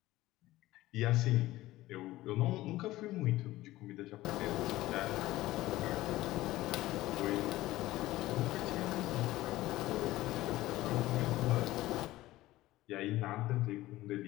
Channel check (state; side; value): quieter; right; 16.9 dB